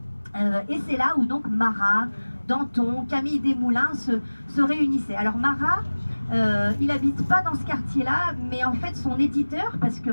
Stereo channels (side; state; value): both; inverted; correlation -1.00